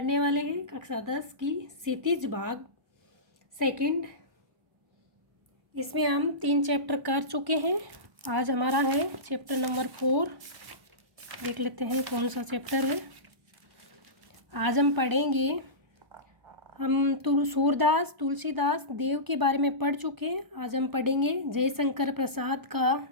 वाले हैं कक्षा 10 की क्षितिज भाग सेकंड। इसमें हम 3 चैप्टर कर चुके हैं। आज हमारा है चैप्टर नंबर 4। देख लेते हैं कौन सा चैप्टर है। आज हम पढ़ेंगे, हम सूरदास तुलसीदास देव के बारे में पढ़ चुके हैं। आज हम पढ़ेंगे जयशंकर प्रसाद का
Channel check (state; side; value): late; left; 1.0 ms